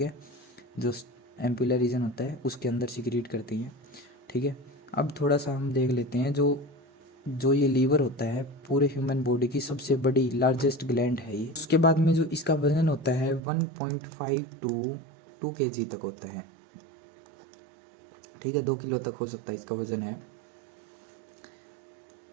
जो एम्पुलर रीजन होता है उसके अंदर सिक्रीट करती हैं, ठीक है। अब थोड़ा सा हम देख लेते हैं, जो जो ये लीवर होता है पूरे ह्यूमन बॉडी की सबसे बड़ी लार्जेस्ट ग्लैंड है ये। उसके बाद में जो इसका वजन होता है 1.5 टू 2 kg तक होता है, ठीक है। 2 किलो तक हो सकता है इसका वजन है।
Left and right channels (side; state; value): left; drops out; at 13.4 s